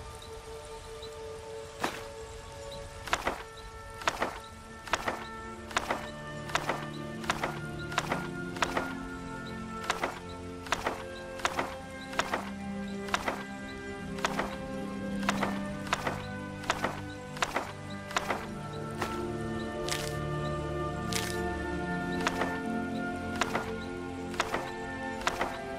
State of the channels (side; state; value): both; identical; correlation 1.00